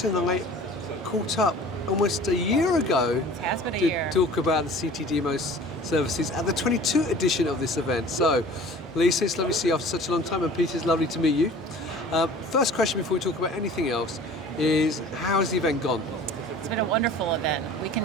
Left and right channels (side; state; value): both; normal; correlation 0.45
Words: and I caught up almost a year ago to talk about the CTDMO services at the 22 edition of this event. So, Lisa, it's lovely to see you after such a long time, and Peter, it's lovely to meet you. First question before we talk about anything else is, how has the event gone? It's been a wonderful event. We